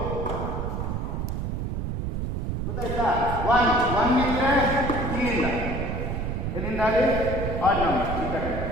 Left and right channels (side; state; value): right; noise; rumble, 2 dB below the sound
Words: ಗೊತ್ತಾಯ್ತಾ? 1 ಇದ್ರೆ ಇಲ್ಲಿಂದ ಎಲ್ಲಿಂದ ಅಲ್ಲಿ ಆಡ್ ನಂಬರ್ ಈ ಕಡೆ